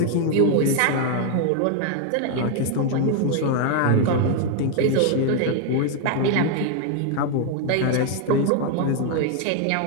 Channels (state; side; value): different; both; correlation 0.00